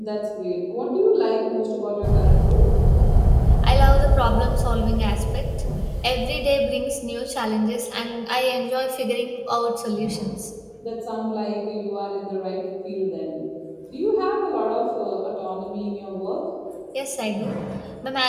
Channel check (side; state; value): both; identical; correlation 1.00